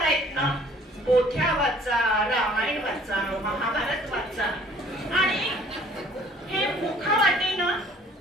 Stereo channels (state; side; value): normal; both; correlation 0.55